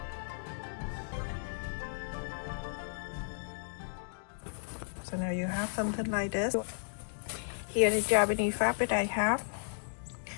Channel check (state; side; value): silent; right; digital silence